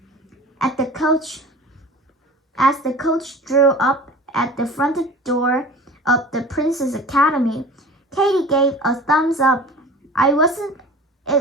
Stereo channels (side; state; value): both; normal; correlation 0.40